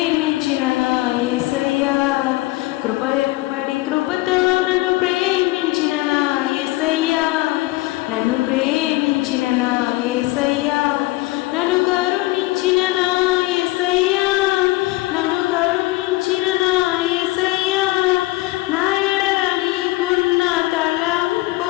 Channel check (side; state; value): right; quieter; 20.0 dB